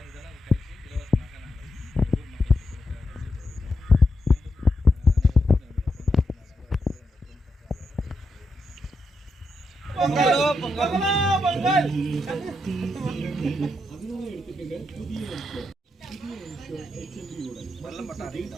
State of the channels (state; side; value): normal; both; correlation 0.84